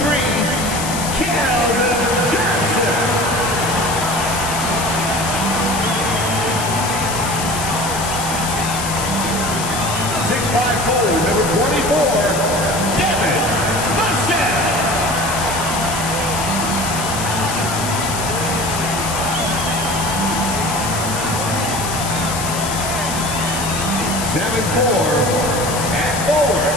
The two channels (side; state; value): left; noise; hiss, 6 dB below the sound